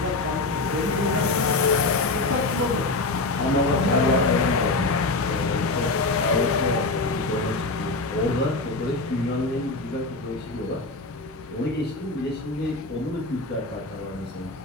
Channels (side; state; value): right; quieter; 3.4 dB